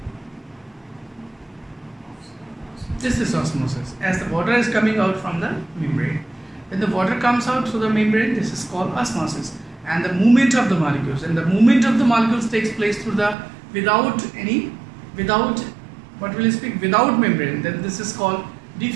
This is osmosis. As the water is coming out from the membrane, when the water comes out through the membrane, this is called osmosis. And the movement of the molecules, and the movement of the molecules takes place through the without what will you speak, without membrane, then this is called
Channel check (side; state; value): left; drops out; at 13.4 s